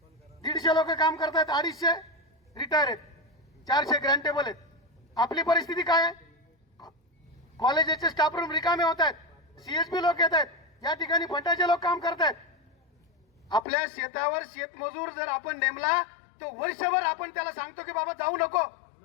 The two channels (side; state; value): right; drops out; at 13.7 s